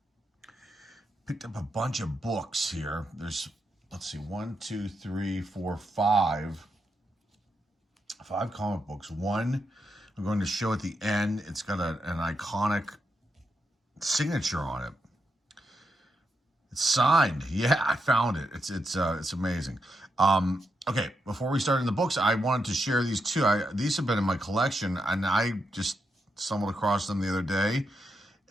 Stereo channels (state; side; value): normal; both; correlation 0.83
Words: Picked up a bunch of books here. There's, let's see, 5 comic books. One I'm going to show at the end. It's got an iconic signature on it. It's signed. Yeah, I found it. It's amazing. Okay, before we start in the books, I wanted to share these two. These have been in my collection, and I just stumbled across them the other day